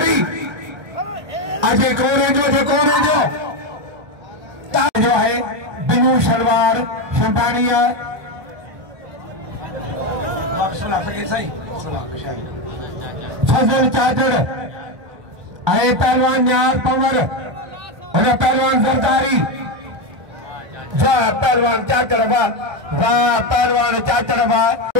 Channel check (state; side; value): late; left; 1.3 ms